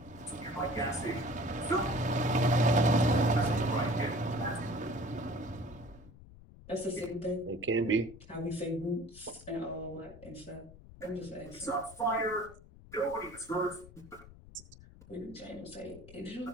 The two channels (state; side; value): noise; left; rumble, 19 dB below the sound